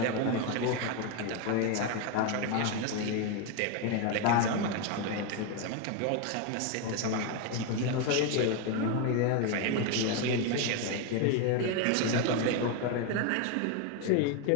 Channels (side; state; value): both; different; correlation 0.02